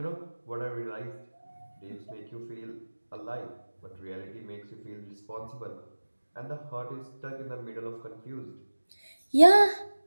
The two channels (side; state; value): both; inverted; correlation -1.00